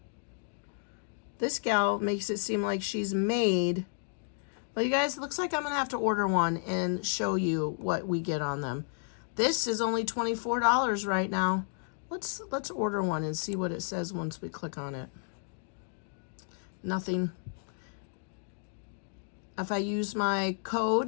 This gal makes it seem like she's made. Well, you guys, it looks like I'm gonna have to order one and show you what we get on them. This is only $24 right now. Let's order one and see what it says once we click on it. Nothing. If I use my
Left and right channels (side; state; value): right; silent; digital silence